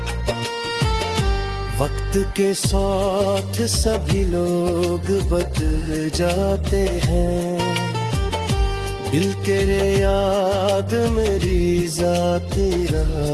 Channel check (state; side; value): identical; both; correlation 1.00